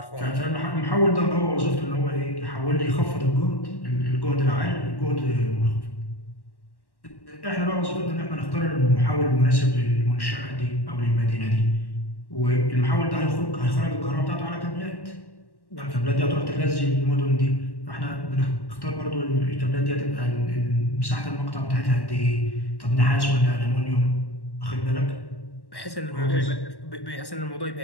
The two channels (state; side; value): late; right; 1.1 ms